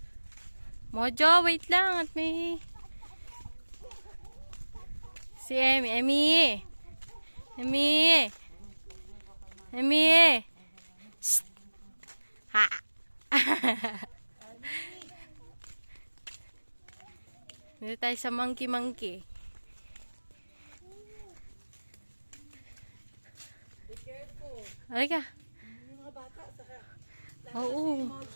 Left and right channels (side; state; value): both; inverted; correlation -1.00